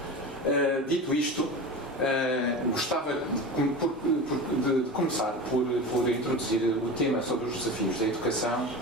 Dito isto, gostava de começar por introduzir o tema sobre os desafios da educação,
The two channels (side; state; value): both; normal; correlation 0.29